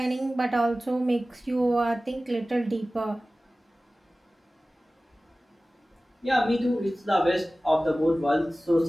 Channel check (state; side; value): normal; both; correlation 0.97